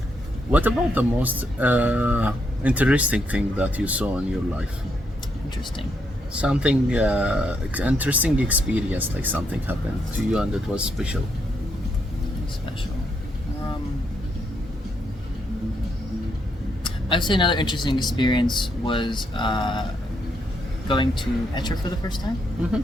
What about the most interesting thing that you saw in your life? Interesting. Something interesting experience, like something happened to you and it was special. Special. I would say another interesting experience was going to Petra for the first time. Mm-hmm.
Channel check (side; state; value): both; normal; correlation 0.77